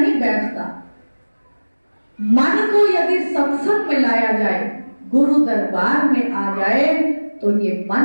बैठता। मन को यदि सत्संग में लाया जाए, गुरु दरबार में आ जाए, तो ये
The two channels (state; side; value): inverted; both; correlation -1.00